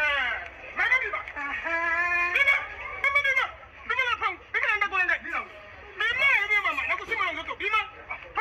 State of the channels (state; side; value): identical; both; correlation 1.00